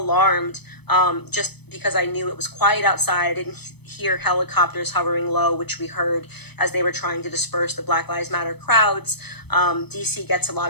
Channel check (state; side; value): late; right; 0.98 ms